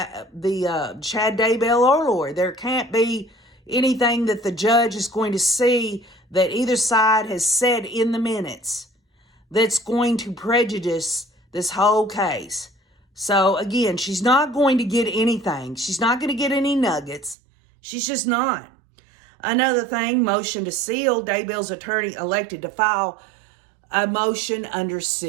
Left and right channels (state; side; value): drops out; left; at 17.4 s